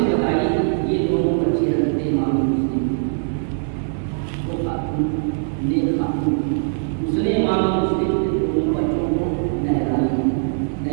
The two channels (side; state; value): left; silent; 65 dB below the other